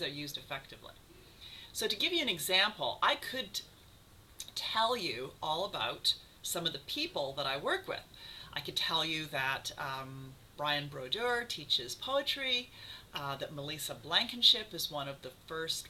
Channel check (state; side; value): identical; both; correlation 1.00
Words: used effectively. So to give you an example, I could tell you all about some of the people that I work with. I could tell you that Brian Brodeur teaches poetry, that Melissa Blankenship is one of